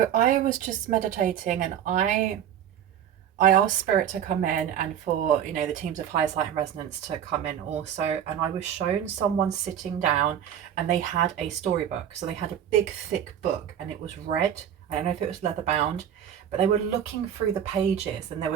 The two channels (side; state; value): left; quieter; 9.6 dB